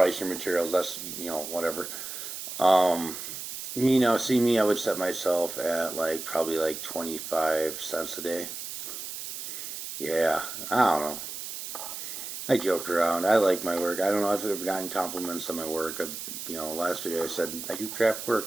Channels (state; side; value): noise; right; hiss, 8 dB below the sound